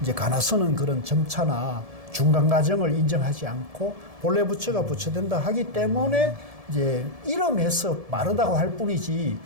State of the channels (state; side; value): late; left; 1.7 ms